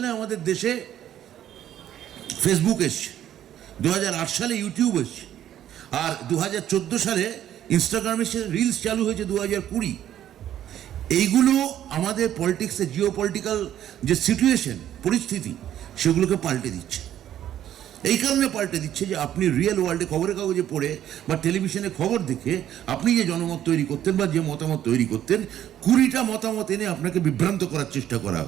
আমাদের দেশে ফেসবুক এসছে, 2008 সালে ইউটিউব এসছে, আর 2014 সালে ইনস্টাগ্রামে রিলস চালু হয়েছে 2020। এইগুলো আমাদের পলিটিক্সে জিও পলিটিক্যাল যে সিচুয়েশন, পরিস্থিতি, সেগুলোকে পাল্টে দিচ্ছে। এই কারণে পাল্টে দিচ্ছে যে আপনি রিয়েল ওয়ার্ল্ডে খবরের কাগজে পড়ে বা টেলিভিশনে খবর দেখে আপনি যে জনমত তৈরি করতেন বা যে মতামত তৈরি করতেন, 20টা মতামত এনে আপনাকে বিভ্রান্ত করার চেষ্টা করা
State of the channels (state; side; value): quieter; left; 11.3 dB